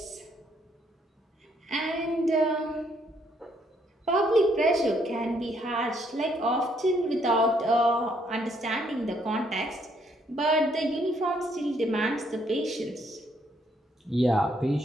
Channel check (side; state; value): both; normal; correlation 0.70